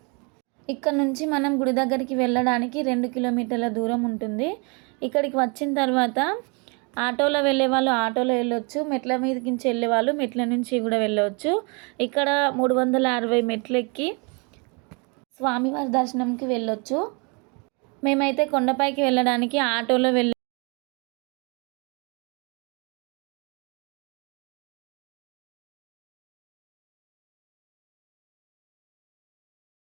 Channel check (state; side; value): quieter; left; 32.7 dB